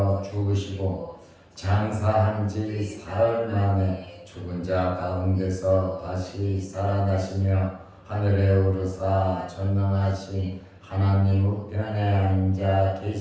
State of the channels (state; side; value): identical; both; correlation 1.00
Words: 죽으시고 장사한 지 사흘 만에 죽은 자 가운데서 다시 살아나시며 하늘에 오르사 전능하신 하나님 우편에 앉아